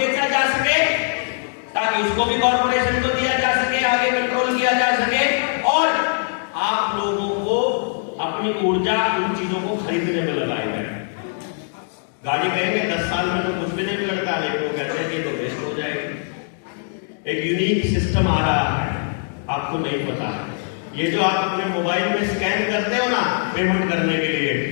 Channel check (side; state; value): right; silent; 65 dB below the other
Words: जा सके, ताकि उसको भी कॉर्पोरेशन को दिया जा सके, आगे कंट्रोल किया जा सके और आप लोगों को अपने अपनी ऊर्जा उन चीजों को खरीदने में लगाए गए। गाड़ी कहेंगे 10 साल में तो कुछ भी नहीं बिगड़ता, लेकिन वो कहते हैं कि तो वेस्ट हो जाएगी। एक यूनिक सिस्टम आ रहा है, आपको नहीं पता है। ये जो आप अपने मोबाइल में स्कैन करते हो ना पेमेंट करने के लिए,